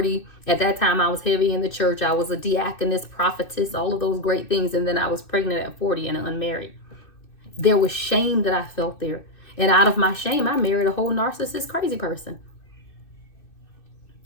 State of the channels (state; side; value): late; right; 2.6 ms